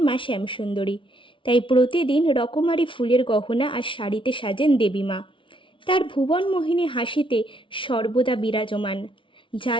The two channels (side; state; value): right; late; 0.25 ms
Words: মা শ্যামসুন্দরী, তাই প্রতিদিন রকমারি ফুলের গহনা আর শাড়িতে সাজেন দেবী মা। তার ভুবন মোহিনী হাসিতে সর্বদা বিরাজমান, যা